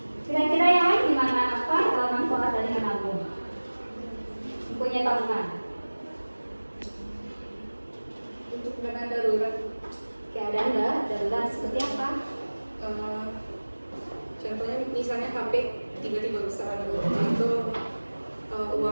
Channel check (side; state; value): both; inverted; correlation -1.00